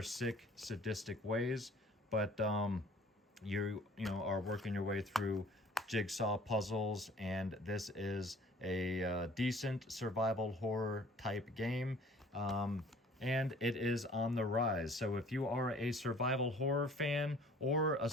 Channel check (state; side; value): normal; both; correlation 0.52